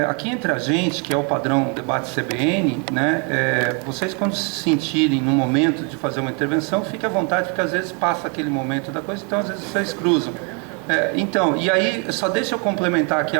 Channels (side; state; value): left; quieter; 35.5 dB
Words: entre a gente, que é o padrão debate CBN, né, vocês quando se sentirem no momento de fazer uma intervenção, fiquem à vontade, porque às vezes passa aquele momento da coisa, então às vezes vocês cruzam. Então, e aí, só deixa eu complementar aqui